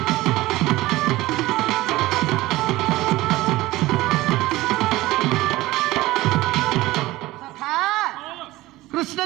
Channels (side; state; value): left; quieter; 18.1 dB